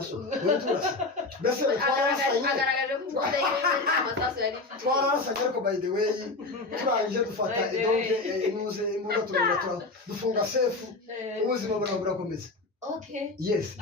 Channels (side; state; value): right; quieter; 3.4 dB